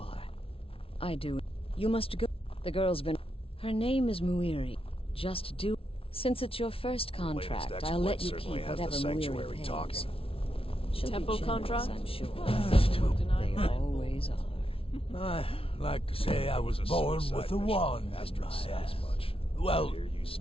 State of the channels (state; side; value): late; right; 0.26 ms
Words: I do. You must go. The girl's been... Her name is Muiri. Just do... Since it's your first contract, I'll let you keep whatever Muiri pays. Talking. She'll Temple be generous, contract? I'm sure. They always are. I like to say I was born with a wand in my hand. Well, here you